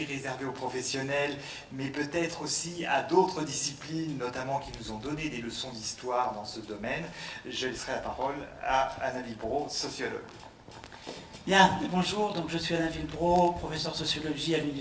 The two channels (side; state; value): both; identical; correlation 1.00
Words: réservée aux professionnels, mais peut-être aussi à d'autres disciplines, notamment qui nous ont donné des leçons d'histoire dans ce domaine, je laisserai la parole à Anna Villebreau, sociologue. Bien, bonjour, donc je suis Alain Villebreau, professeur de sociologie à